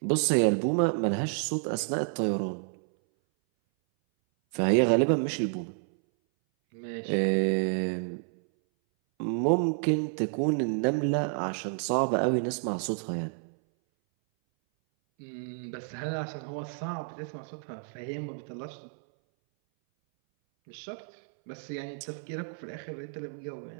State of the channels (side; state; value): left; silent; 58 dB below the other